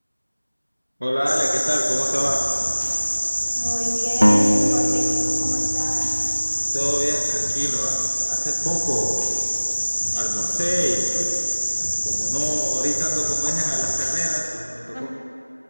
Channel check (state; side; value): inverted; both; correlation -1.00